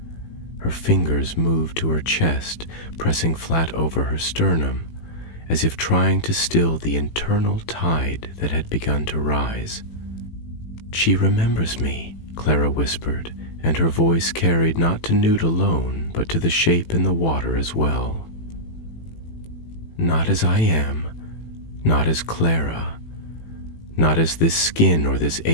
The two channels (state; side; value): late; right; 18 ms